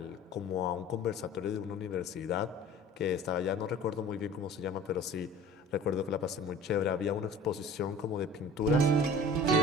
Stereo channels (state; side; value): normal; both; correlation 0.44